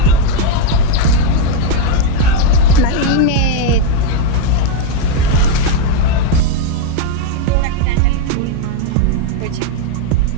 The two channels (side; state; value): both; different; correlation 0.01